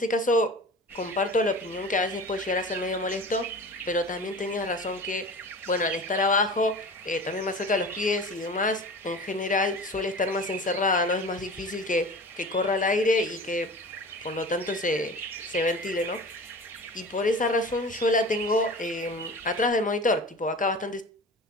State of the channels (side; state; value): both; normal; correlation 0.36